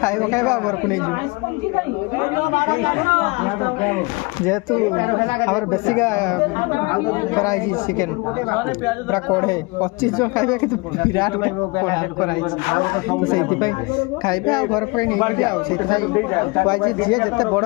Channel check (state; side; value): quieter; right; 26.8 dB